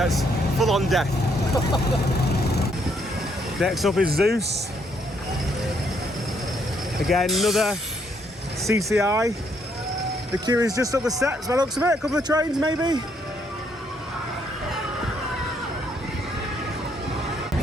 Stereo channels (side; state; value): both; normal; correlation 0.72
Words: full on death. Next up is Zeus. Again, another CCI. The queue is just up the steps by the looks of it. A couple of trains maybe.